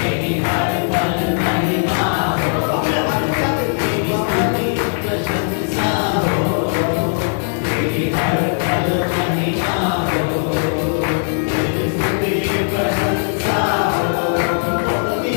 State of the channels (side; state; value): right; silent; 63 dB below the other